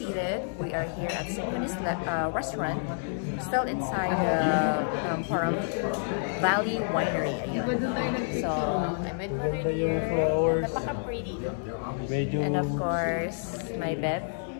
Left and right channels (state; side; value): silent; right; digital silence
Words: We are here at Symphony's restaurant. Still inside the Pahrump Valley Winery. Ayun. So, I'm with Mother Dear. Napaka-pretty. And of course, my bed